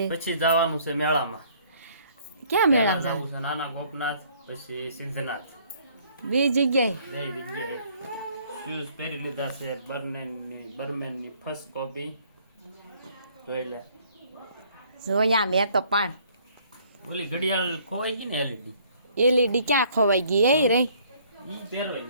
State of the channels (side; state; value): both; inverted; correlation -0.61